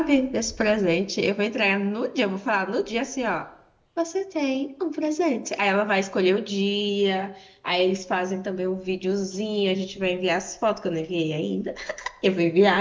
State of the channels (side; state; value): both; identical; correlation 1.00